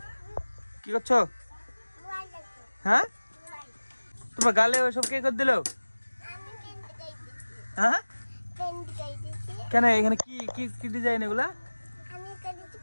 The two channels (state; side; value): inverted; both; correlation -1.00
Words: কি করছো? হ্যাঁ, তোমার গালে ওইসব কে করে দিল? হ্যাঁ, কেন এখানে কি কি কি ডিজাইন এগুলা?